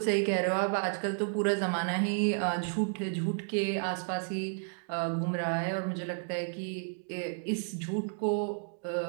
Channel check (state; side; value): silent; left; digital silence